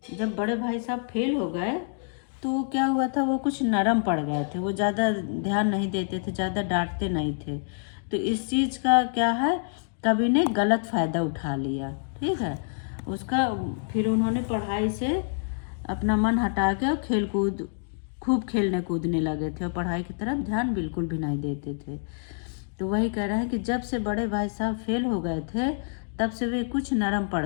जब बड़े भाई साहब फेल हो गए तो क्या हुआ था, वो कुछ नरम पड़ गए थे, वो ज़्यादा ध्यान नहीं देते थे, ज़्यादा डांटते नहीं थे। तो इस चीज़ का क्या है, कवि ने गलत फ़ायदा उठा लिया। ठीक है, उसका फिर उन्होंने पढ़ाई से अपना मन हटा के और खेल कूद खूब खेलने कूदने लगे थे और पढ़ाई की तरफ ध्यान बिल्कुल भी नहीं देते थे। तो वही कह रहे हैं कि जब से बड़े भाई साहब फेल हो गए थे तब से वे कुछ नरम पड़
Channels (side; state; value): right; silent; digital silence